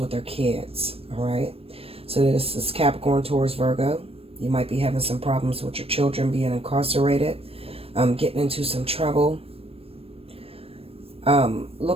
their kids, all right? So this is Capricorn, Taurus, Virgo. You might be having some problems with your children being incarcerated, getting into some trouble.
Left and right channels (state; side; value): late; left; 0.28 ms